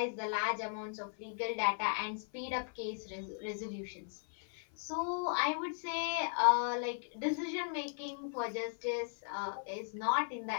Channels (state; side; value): silent; right; 53 dB below the other